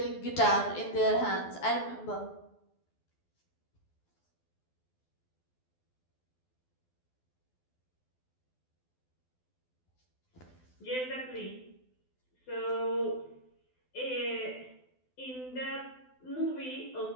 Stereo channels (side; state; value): right; late; 12 ms